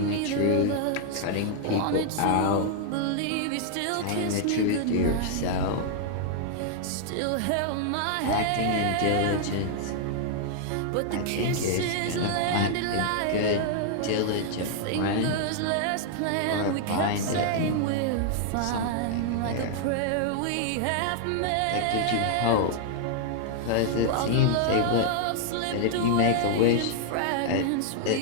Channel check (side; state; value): both; different; correlation 0.00